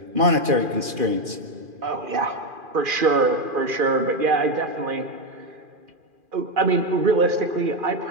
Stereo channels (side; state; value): left; late; 2.4 ms